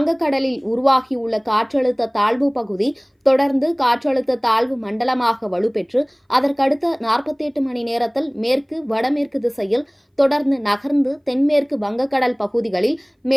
உருவாகியுள்ள காற்றழுத்த தாழ்வு பகுதி தொடர்ந்து காற்றழுத்த தாழ்வு மண்டலமாக வலுப்பெற்று அதற்கடுத்த 48 மணி நேரத்தில் மேற்கு வடமேற்கு திசையில் தொடர்ந்து நகர்ந்து தென்மேற்கு வங்கக்கடல் பகுதிகளில்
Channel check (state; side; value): identical; both; correlation 1.00